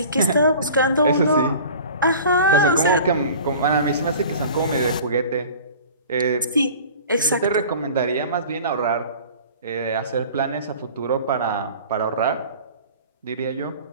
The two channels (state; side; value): inverted; both; correlation -0.42